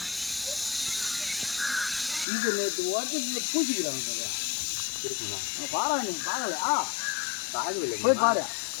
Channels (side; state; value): right; drops out; at 2.2 s